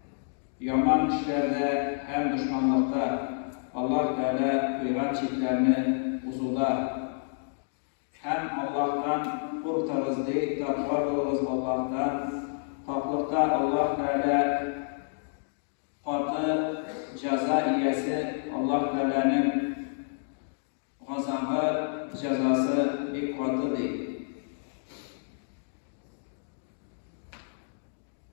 yaman işlerde hem düşmanlıkta Allah Teala kıyran çiftlerini uzuda hem Allah'tan kurtarız değil, takva oluruz Allah'tan. Taklıkta Allah Teala katı ceza iyesi Allah Teala'nın gazabı, cezası bir katı değil.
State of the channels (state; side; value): silent; right; digital silence